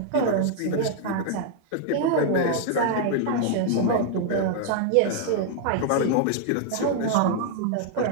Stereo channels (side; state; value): both; different; correlation -0.01